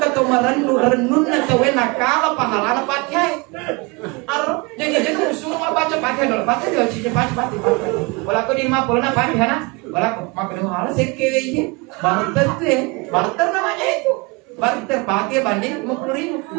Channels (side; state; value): left; quieter; 27.6 dB